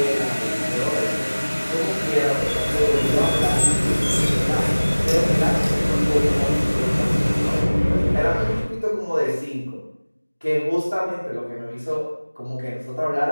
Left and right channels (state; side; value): inverted; both; correlation -1.00